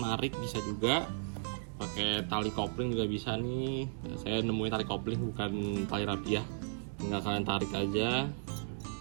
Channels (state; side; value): silent; left; digital silence